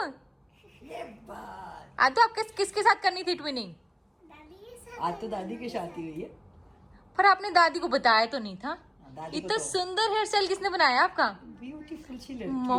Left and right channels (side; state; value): both; identical; correlation 1.00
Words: ये बात आदू आप किसके साथ करनी थी ट्विनिंग? आज तो दादी की शादी हुई है। पर आपने दादी को बताया तो नहीं था। दादी को इतना तो सुंदर हेयर स्टाइल किसने बनाया आपका? ब्यूटीफुल सी लड़की